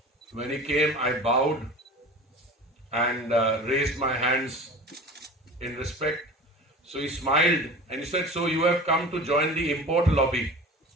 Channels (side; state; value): both; normal; correlation 0.37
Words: when he came, I bowed and raised my hands in respect. So he smiled and he said, "So you have come to join the import lobby."